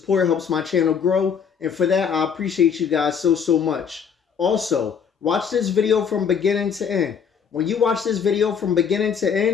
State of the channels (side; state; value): right; quieter; 6.9 dB